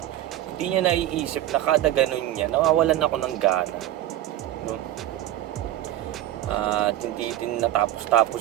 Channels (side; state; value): left; quieter; 13.7 dB